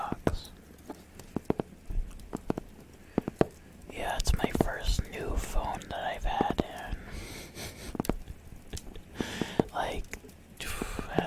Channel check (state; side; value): identical; both; correlation 1.00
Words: Yeah, it's my first new phone that I've had in like